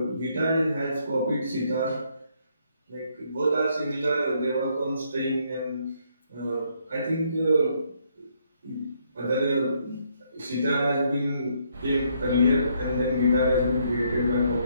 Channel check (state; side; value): inverted; both; correlation -0.71